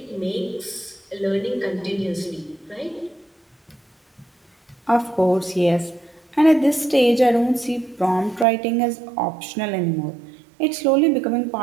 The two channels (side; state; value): left; drops out; at 8.5 s